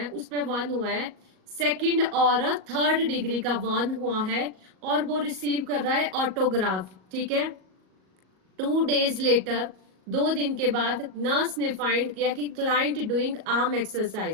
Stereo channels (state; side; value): late; left; 38 ms